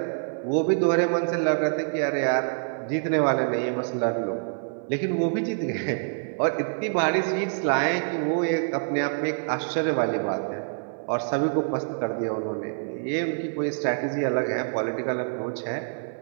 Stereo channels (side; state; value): left; silent; 58 dB below the other